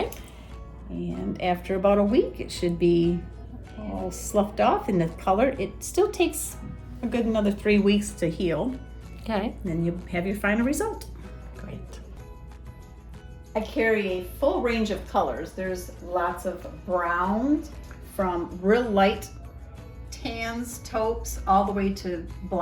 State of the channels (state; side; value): identical; both; correlation 1.00